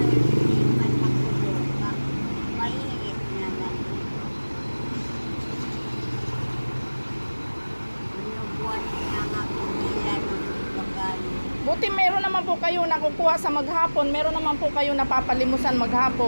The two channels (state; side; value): inverted; both; correlation -1.00